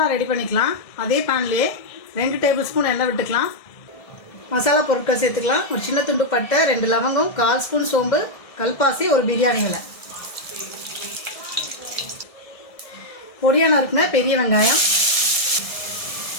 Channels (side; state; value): right; late; 1.6 ms